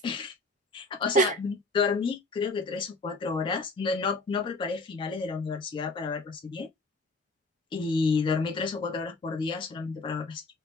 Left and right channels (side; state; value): right; quieter; 3.2 dB